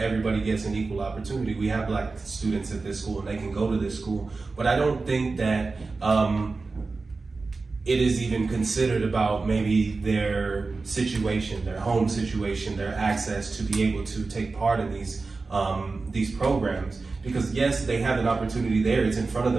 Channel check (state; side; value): quieter; left; 3.9 dB